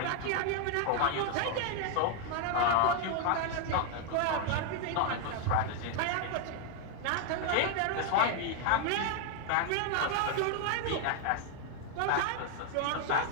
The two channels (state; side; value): different; both; correlation 0.00